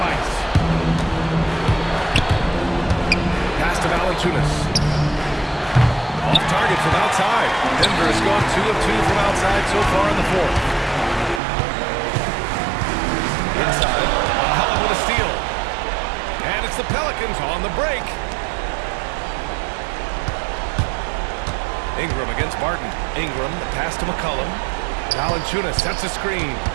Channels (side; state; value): left; drops out; at 11.4 s